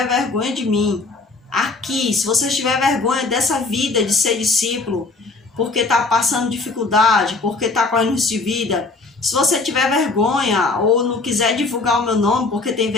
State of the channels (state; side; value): quieter; right; 3.6 dB